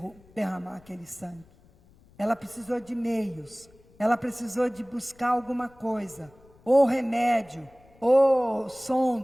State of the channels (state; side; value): noise; left; rumble, 28 dB below the sound